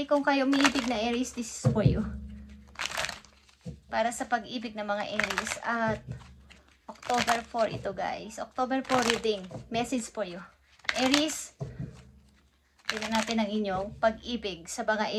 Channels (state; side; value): identical; both; correlation 1.00